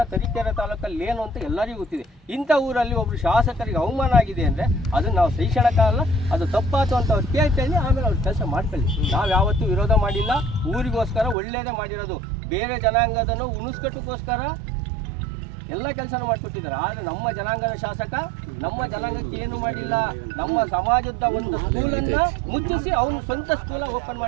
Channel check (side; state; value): left; drops out; at 11.4 s